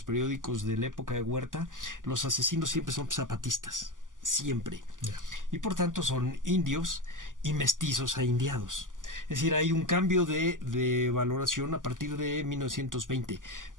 periódicos de la época de Huerta, los asesinos siempre son zapatistas, siempre. Yeah. Y por tanto son indios y mestizos a indiados. Es decir, hay un cambio de valoración a partir de 1920,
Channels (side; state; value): left; late; 0.88 ms